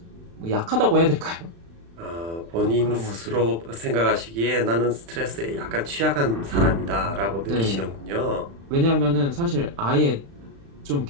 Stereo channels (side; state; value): left; late; 36 ms